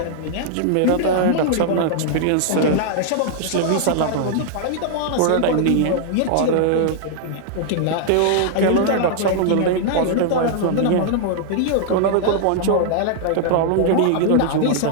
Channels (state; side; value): different; both; correlation -0.01